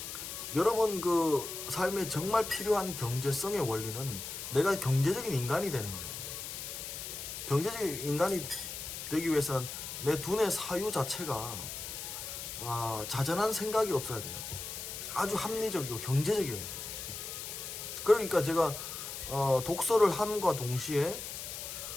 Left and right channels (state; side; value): noise; left; hiss, 7 dB below the sound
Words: 여러분 그 삶에 정말 필요한 경제성의 원리는 내가 경제적인 인간이 되는 거예요. 경제적인 인간이 되기 위해서는 내 두뇌 사유 자체가 자잘한 생각이 없어야 돼요. 아주 합리적이고 경제적이어야 돼요. 그러니까 제가 독서를 함과 동시에